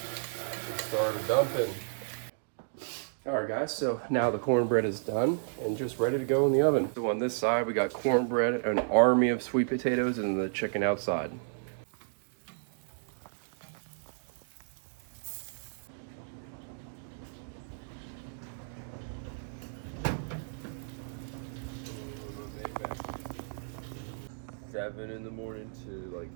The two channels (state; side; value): silent; left; digital silence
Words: Started dumping. All right, guys, so now the cornbread is done and just ready to go in the oven. So on this side, we got cornbread, an army of sweet potatoes, and the chicken outside. Seven in the morning to like